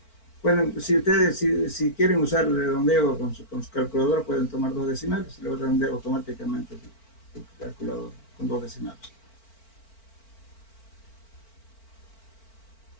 Bueno, si ustedes si quieren usar el redondeo con su calculadora, pueden tomar 2 decimales y luego redondear automáticamente el calculador con 2 decimales.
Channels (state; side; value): late; right; 4.4 ms